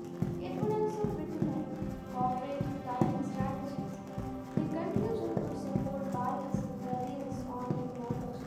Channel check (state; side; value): identical; both; correlation 1.00